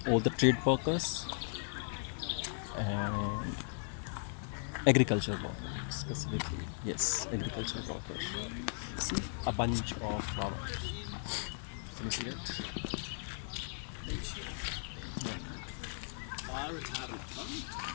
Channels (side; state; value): right; silent; digital silence